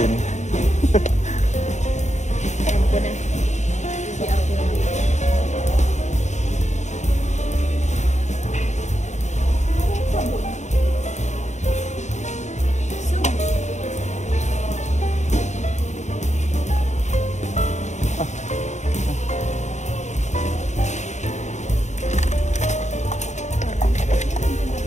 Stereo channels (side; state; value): right; late; 0.34 ms